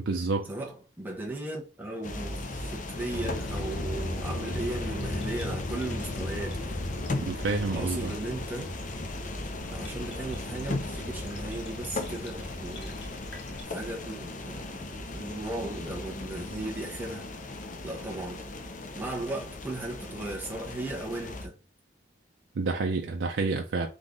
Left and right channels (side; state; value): both; normal; correlation 0.59